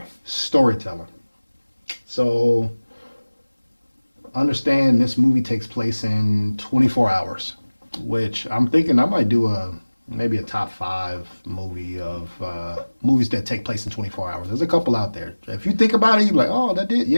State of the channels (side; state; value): both; inverted; correlation -1.00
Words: storytelling. So understand this movie takes place in 24 hours, which I'm thinking I might do maybe a top 5 movie of movies that take place in 24 hours. There's a couple out there. If you think about it, you're like, oh, that did,